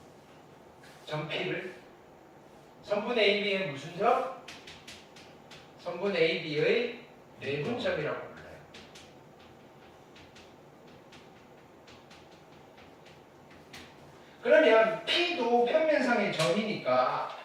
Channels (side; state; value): both; identical; correlation 1.00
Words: 점 P를 선분 AB의 무슨 점? 선분 AB의 내분점이라고 불러요. 그러면 P도 평면상의 점이니까